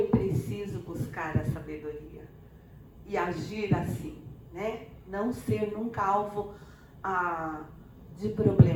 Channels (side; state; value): both; identical; correlation 1.00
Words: preciso buscar a sabedoria e agir assim, né? Não ser nunca alvo de